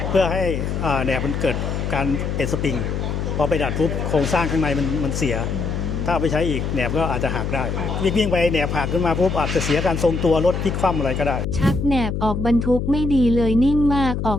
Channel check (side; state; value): left; noise; hum, 2 dB below the sound